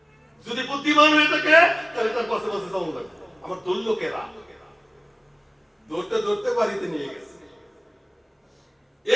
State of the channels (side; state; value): both; identical; correlation 1.00